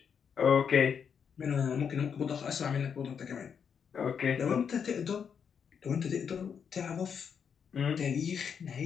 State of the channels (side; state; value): right; quieter; 7.1 dB